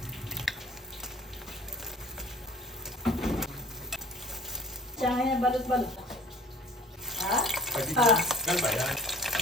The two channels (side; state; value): both; normal; correlation 0.49